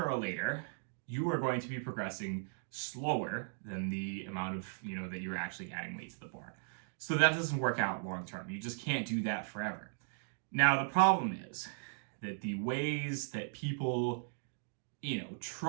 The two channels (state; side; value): silent; left; digital silence